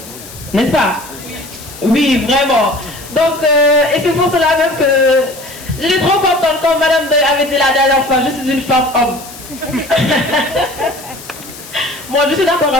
n'est-ce pas? Oui, vraiment. Donc, et c'est pour cela même que j'étais trop contente quand Madame Doy avait dit la dernière fois, je suis une femme homme. Moi, je suis d'accord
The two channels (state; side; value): noise; left; hiss, 16 dB below the sound